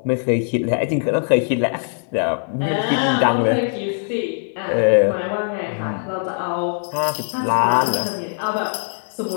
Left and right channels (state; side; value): silent; right; digital silence